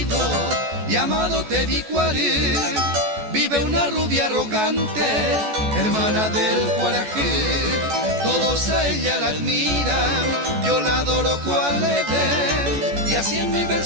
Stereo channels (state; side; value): late; left; 14 ms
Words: llamado Tebicuaré vive una rubia arrogante, hermana del Cuarajé. Todos a ella la admiran, yo la adoro cual Edén, y así en mi